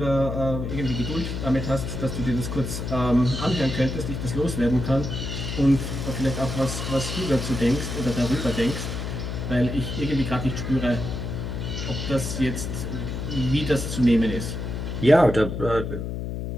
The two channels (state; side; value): noise; left; hum, 4 dB below the sound